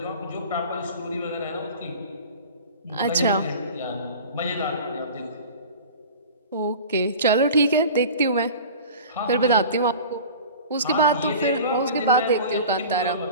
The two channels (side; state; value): both; inverted; correlation -0.38